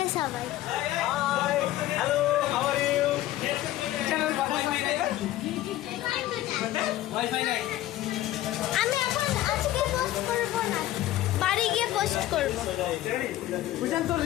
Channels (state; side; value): quieter; right; 14.6 dB